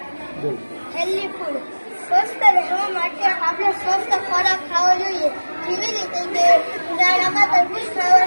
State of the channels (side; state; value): both; inverted; correlation -1.00